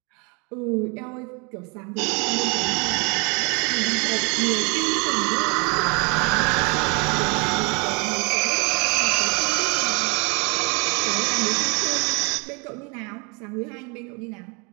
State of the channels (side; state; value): left; quieter; 31.2 dB